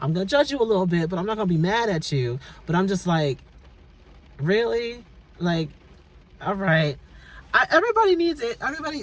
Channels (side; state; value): both; identical; correlation 1.00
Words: going to judge you a little bit, but I'm not going to be mad at you. But I'm just like, really? Like, all right. Everybody needs it.